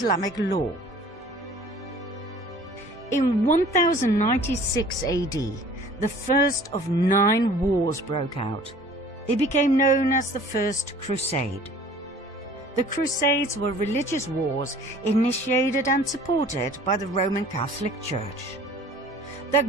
law. In 1096 AD, the first of 9 wars broke out. They became known as the First Crusade. The Crusades were religious wars initiated and supported by the Roman Catholic Church. Their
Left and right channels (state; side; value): normal; both; correlation 0.49